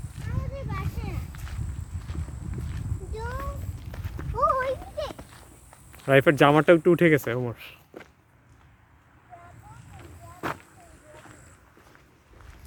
রাইফের জামাটা একটু উঠে গেছে ওমর।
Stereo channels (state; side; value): identical; both; correlation 1.00